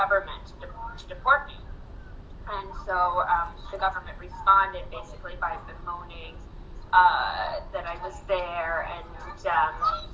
to deport me. And so the government responded basically by bemoaning that I was there, and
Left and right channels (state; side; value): identical; both; correlation 1.00